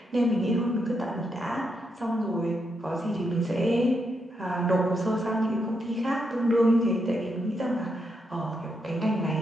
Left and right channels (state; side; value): normal; both; correlation 0.81